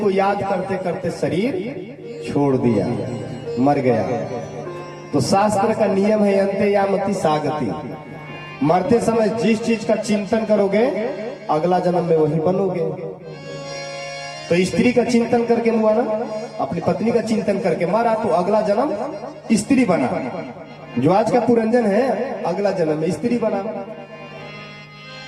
याद करते करते शरीर छोड़ दिया, मर गया। तो शास्त्र का नियम है अंते यामति सागति, मरते समय जिस चीज का चिंतन करोगे अगला जन्म में वही बनोगे। तो स्त्री का चिंतन करके हुआ ना, अपनी पत्नी का चिंतन करके मारा तो अगला जन्म स्त्री बना। जो आज का पुरंजन है अगला जन्म में स्त्री बना।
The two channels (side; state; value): both; identical; correlation 1.00